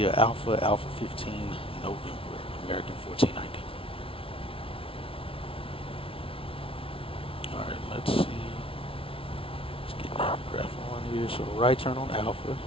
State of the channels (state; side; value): late; right; 0.26 ms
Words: Alpha 15, November, American 1490. Alright, let's see. Let's get that graph on here. So right turn on Alpha